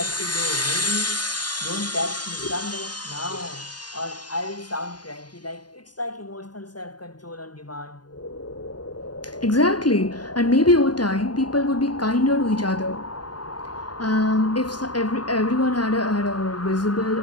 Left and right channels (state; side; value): late; right; 0.70 ms